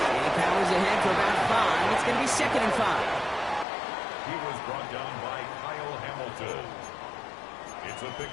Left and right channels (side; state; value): right; drops out; at 3.7 s